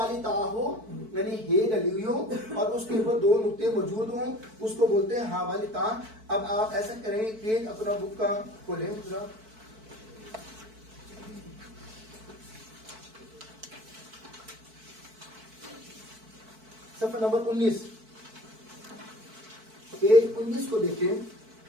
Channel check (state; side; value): late; left; 4.5 ms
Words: تا ہو یعنی ہے ڈلی ہوئی ہو اور اس کے اوپر 2 نقطے موجود ہوں, اس کو بولتے ہیں ہا والی تا. اب آپ ایسا کریں, پیج اپنا بک کا کھولیں ذرا, صفحہ نمبر 19, پیج 19 کو دیکھیں.